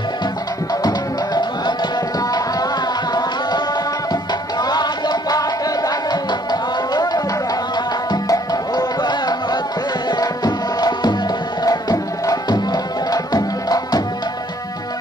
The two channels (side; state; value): both; normal; correlation 0.63